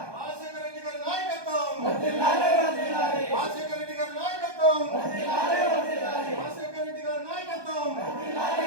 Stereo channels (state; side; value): late; left; 1.2 ms